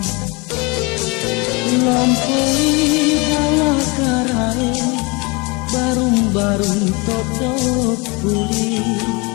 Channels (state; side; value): quieter; right; 28.0 dB